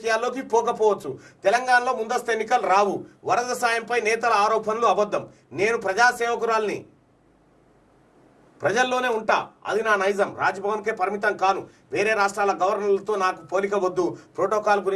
పోకపోవచ్చు. తెలంగాణలో ముందస్తు ఎన్నికలు రావు. వరద సాయంపై నేతల ఆరోపణలు అబద్ధం. నేను ప్రజాసేవకురాల్ని, ప్రజల్లోనే ఉంటా, అది నా నైజం. రాజ్భవన్కే పరిమితం కాను. వేరే రాష్ట్రాల గవర్నర్లతో నాకు పోలిక వద్దు. ప్రోటోకాల్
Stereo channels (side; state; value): both; identical; correlation 1.00